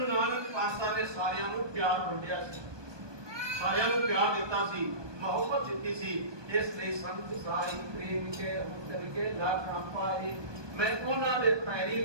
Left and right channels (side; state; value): left; late; 1.2 ms